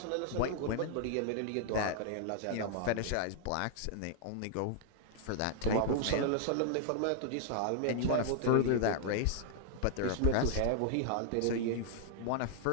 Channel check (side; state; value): both; different; correlation -0.01